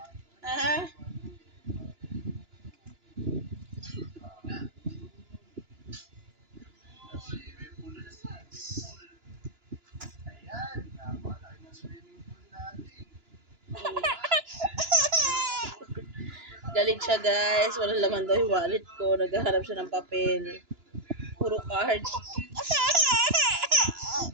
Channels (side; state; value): left; late; 2.9 ms